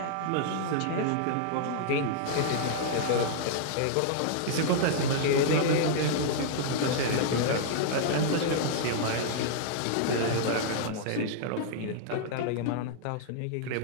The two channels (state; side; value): different; both; correlation -0.01